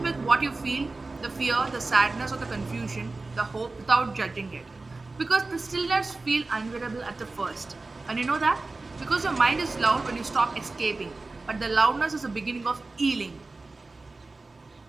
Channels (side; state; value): left; quieter; 3.4 dB